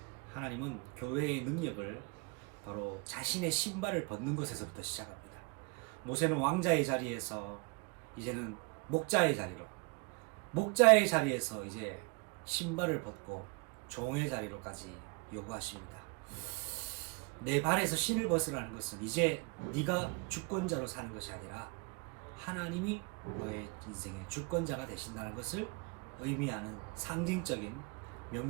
하나님은 교회의 능력을 바로 자신의 신발을 벗는 것에서부터 시작합니다. 모세는 왕자의 자리에서 이제는 목자의 자리에서 이제 신발을 벗고 종의 자리로까지 요구하십니다. 내 발에서 신을 벗으라는 것은 이제 네가 주권자로 사는 것이 아니라 하나님이 너의 인생의 주권자가 되신다는 것을 의미하는 상징적인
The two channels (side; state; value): left; quieter; 30.1 dB